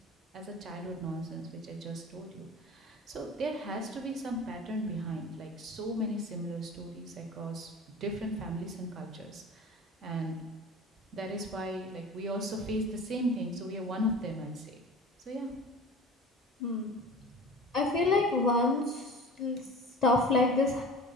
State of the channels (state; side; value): normal; both; correlation 0.39